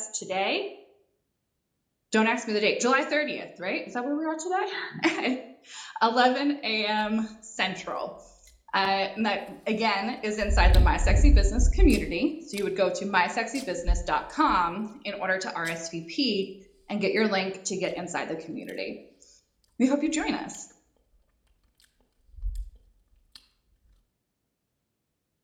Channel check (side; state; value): both; identical; correlation 1.00